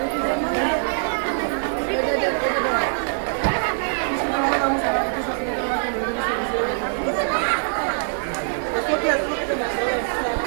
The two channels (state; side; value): silent; left; 63 dB below the other